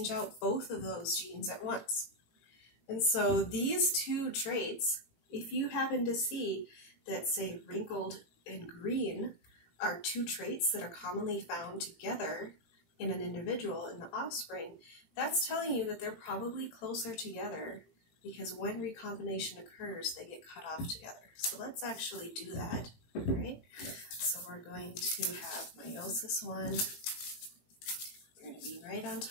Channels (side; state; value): right; late; 18 ms